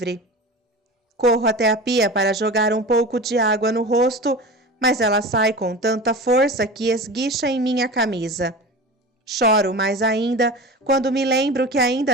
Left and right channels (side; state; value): both; normal; correlation 0.32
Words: Corro até a pia para jogar um pouco de água no rosto, mas ela sai com tanta força que esguicha em minha camisa. Choro mais ainda quando me lembro que